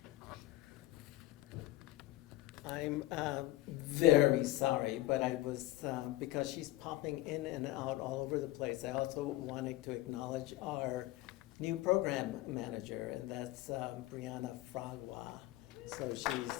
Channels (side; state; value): right; quieter; 16.6 dB